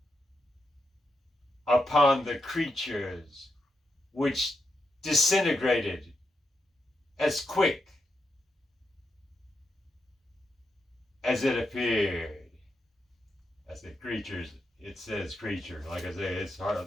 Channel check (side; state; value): both; normal; correlation 0.84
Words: upon the creatures, which disintegrated as quick as it appeared. As the creatures, it says creature. Like I say, it's